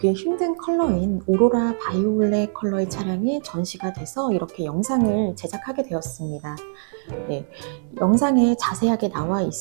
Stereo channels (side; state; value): left; silent; 64 dB below the other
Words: 힘든 컬러인 오로라 바이올렛 컬러의 차량이 전시가 돼서 이렇게 영상을 제작하게 되었습니다. 네, 영상에 자세하게 나와